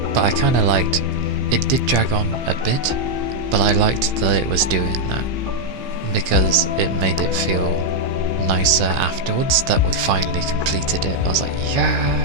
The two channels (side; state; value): left; late; 15 ms